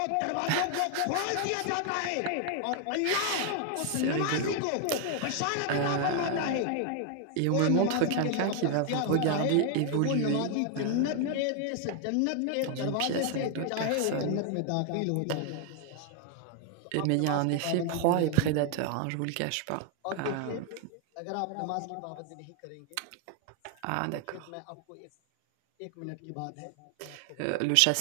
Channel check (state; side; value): different; both; correlation 0.00